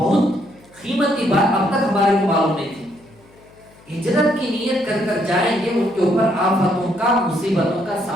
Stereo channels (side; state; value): left; noise; hum, 28 dB below the sound